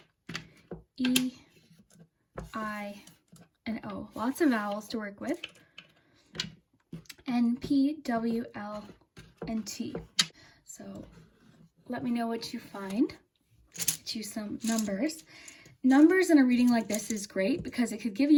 E, I, and O. Lots of vowels to work with. N, P, W, L, and T. So let me know what you find. Get you some numbers. Numbers in a reading like this is great because it could give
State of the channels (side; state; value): both; identical; correlation 1.00